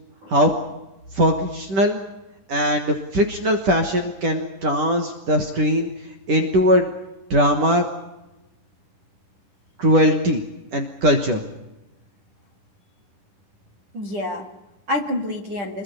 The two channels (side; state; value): left; late; 10 ms